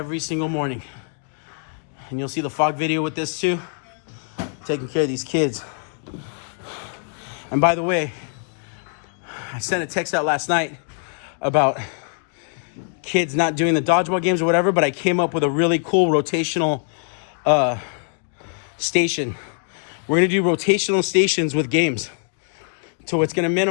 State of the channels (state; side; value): silent; right; 57 dB below the other